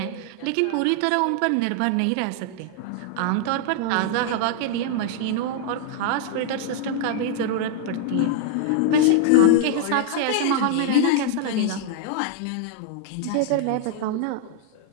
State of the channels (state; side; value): different; both; correlation 0.00